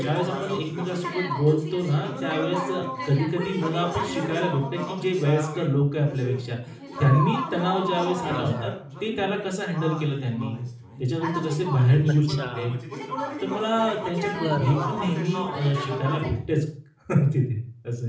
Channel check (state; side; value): identical; both; correlation 1.00